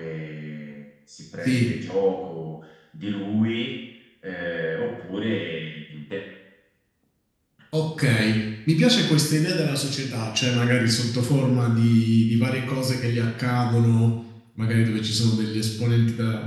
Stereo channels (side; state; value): both; identical; correlation 1.00